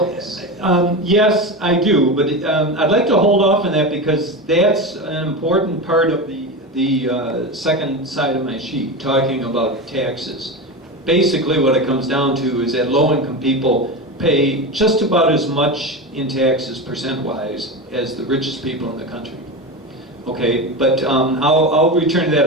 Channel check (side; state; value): both; normal; correlation 0.22